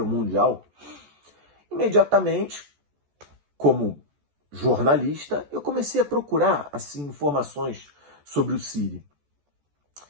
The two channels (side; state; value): left; late; 14 ms